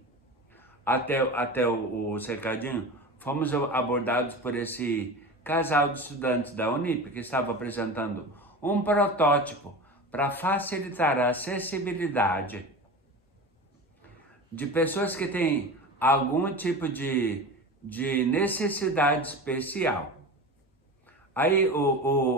até o cercadinho, fomos abordados por esse casal de estudantes da Unip, que estava apresentando um protótipo para facilitar a acessibilidade de pessoas que têm algum tipo de necessidade especial. Aí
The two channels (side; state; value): both; normal; correlation 0.30